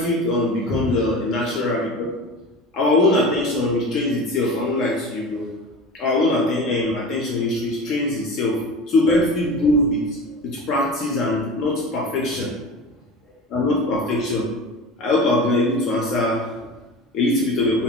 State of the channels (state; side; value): normal; both; correlation 0.33